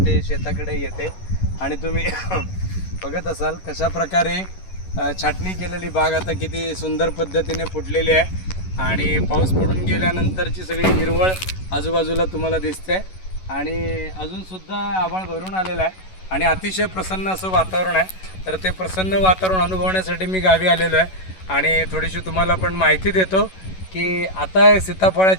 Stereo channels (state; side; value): late; right; 11 ms